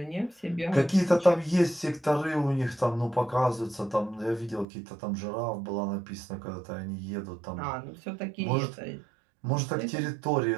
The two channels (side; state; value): left; drops out; at 4.7 s